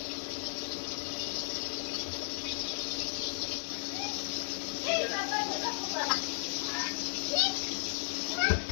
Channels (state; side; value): silent; right; digital silence